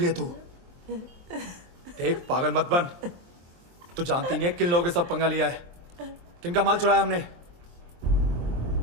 तू। देख, पागल मत बन। तू जानती नहीं है किन लोगों के साथ पंगा लिया है, किनका माल चुराया हमने।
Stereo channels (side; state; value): left; late; 23 ms